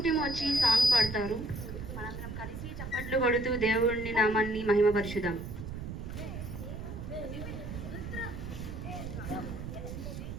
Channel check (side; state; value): right; noise; rumble, 8 dB below the sound